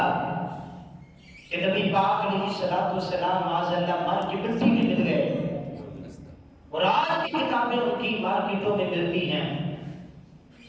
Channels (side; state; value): both; identical; correlation 1.00